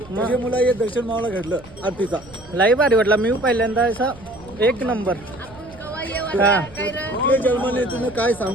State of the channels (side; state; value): right; noise; rumble, 21 dB below the sound